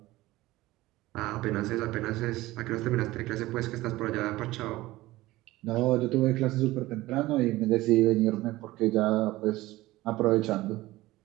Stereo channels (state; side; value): quieter; left; 18.0 dB